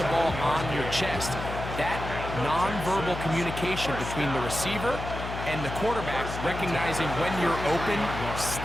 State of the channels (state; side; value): noise; left; hum, 7 dB below the sound